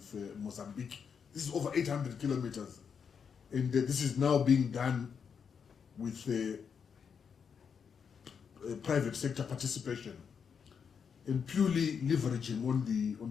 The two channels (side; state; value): right; quieter; 6.6 dB